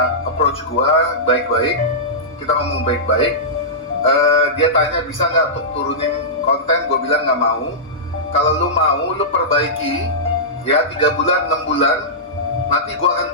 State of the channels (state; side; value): normal; both; correlation -0.15